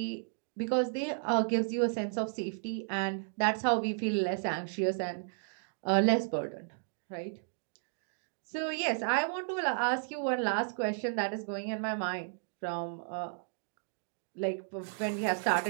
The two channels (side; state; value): left; silent; digital silence